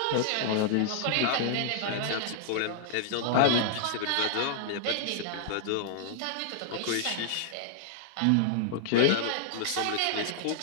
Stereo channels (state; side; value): different; both; correlation -0.01